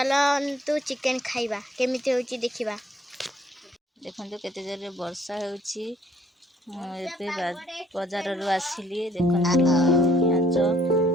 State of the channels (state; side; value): normal; both; correlation 0.63